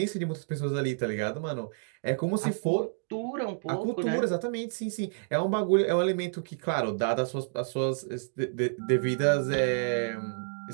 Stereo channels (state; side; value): silent; left; digital silence